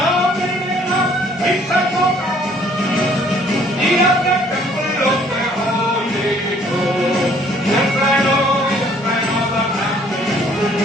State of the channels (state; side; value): normal; both; correlation 0.60